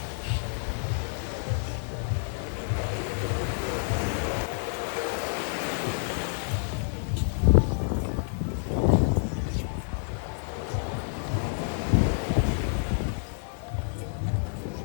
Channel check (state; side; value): silent; right; 59 dB below the other